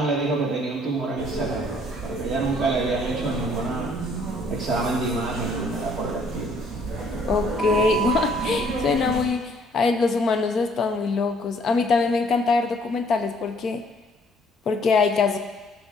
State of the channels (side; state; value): both; normal; correlation 0.62